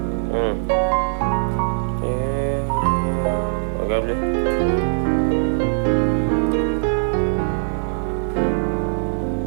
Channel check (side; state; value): left; silent; digital silence